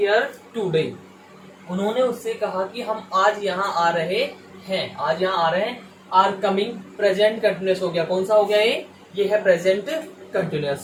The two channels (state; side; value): identical; both; correlation 1.00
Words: today. उन्होंने उससे कहा कि हम आज यहाँ आ रहे हैं। आज यहाँ आ रहे हैं। आर कमिंग प्रेजेंट कंटिन्यूअस हो गया। कौन सा हो गया ये है प्रेजेंट